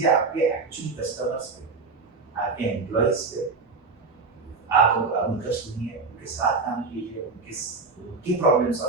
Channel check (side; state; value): left; quieter; 4.3 dB